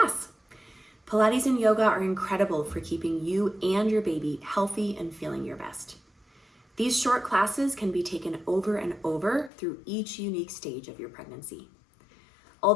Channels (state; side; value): drops out; right; at 9.5 s